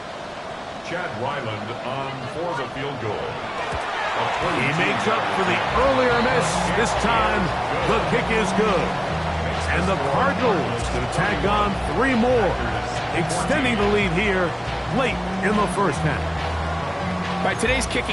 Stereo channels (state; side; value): identical; both; correlation 1.00